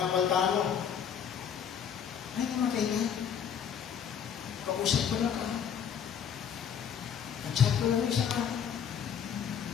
napaltano, ay, namatay na. Kausap ko lang ka. At-chat ko lang isa ka.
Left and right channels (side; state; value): right; quieter; 8.0 dB